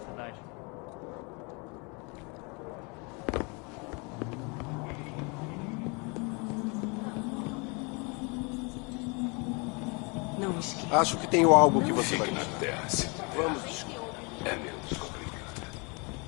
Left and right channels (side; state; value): right; quieter; 30.8 dB